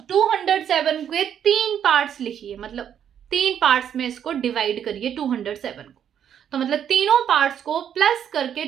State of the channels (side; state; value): left; quieter; 9.1 dB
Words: 207 के 3 पार्ट्स लिखिए, मतलब 3 पार्ट्स में इसको डिवाइड करिए 207 को, तो मतलब तीनों पार्ट्स को प्लस करके